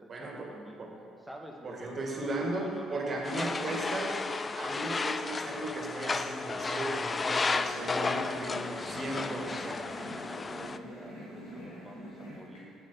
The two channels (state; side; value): normal; both; correlation 0.81